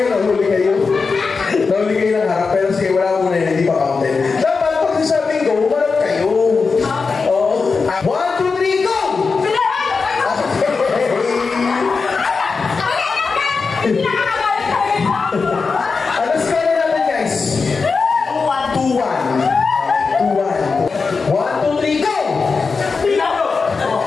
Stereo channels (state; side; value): quieter; right; 4.7 dB